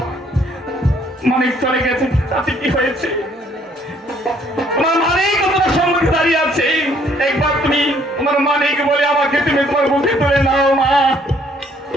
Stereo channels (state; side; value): normal; both; correlation 0.64